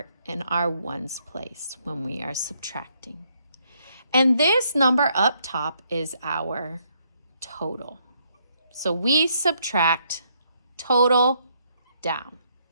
in our ones place when we are subtracting. And this number up top is our total. So we subtract total down.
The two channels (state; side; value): inverted; both; correlation -0.72